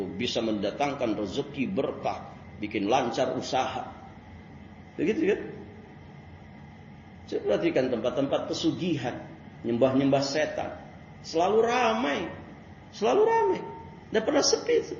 bisa mendatangkan rezeki berkah, bikin lancar usaha, begitu kan? Saya perhatikan tempat-tempat pesugihan, nyembah-nyembah setan. Selalu ramai. Tidak pernah sepi itu.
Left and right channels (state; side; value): identical; both; correlation 1.00